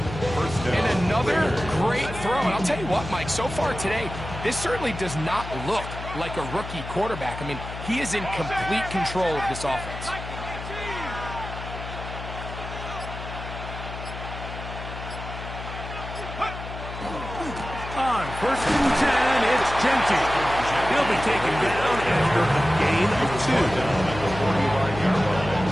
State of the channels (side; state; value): left; noise; hum, 9 dB below the sound